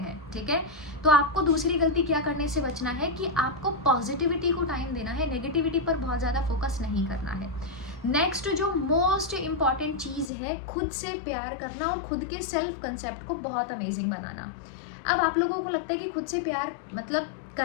ठीक है। तो आपको दूसरी गलती क्या करने से बचना है कि आपको पॉजिटिविटी को टाइम देना है, नेगेटिविटी पर बहुत ज़्यादा फोकस नहीं करना है। नेक्स्ट जो मोस्ट इम्पॉर्टेंट चीज़ है, खुद से प्यार करना और खुद के सेल्फ कंसेप्ट को बहुत अमेजिंग बनाना। अब आप लोगों को लगता है कि खुद से प्यार मतलब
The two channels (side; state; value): right; drops out; at 10.3 s